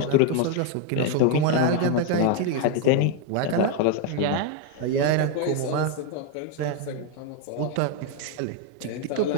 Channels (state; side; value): different; both; correlation 0.01